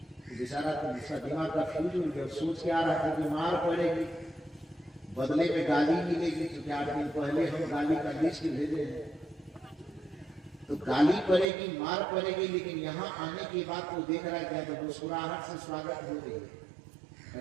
बेचारा तो उसका दिमाग का फ्यूज उड़ गया, सोच के आ रहा था कि मार पड़ेगी, बदले में गाली मिलेगी, क्योंकि 8 दिन पहले हम गाली का लिस्ट भेजे हैं, तो गाली पड़ेगी मार पड़ेगी। लेकिन यहाँ आने के बाद तो देख रहा है क्या, तो मुस्कुराहट से स्वागत हो रही है।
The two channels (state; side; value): drops out; left; at 11.5 s